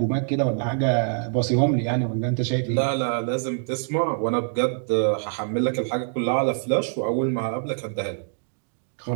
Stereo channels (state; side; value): silent; left; digital silence